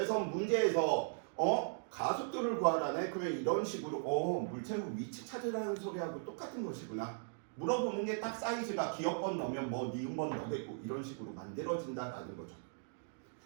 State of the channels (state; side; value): silent; left; digital silence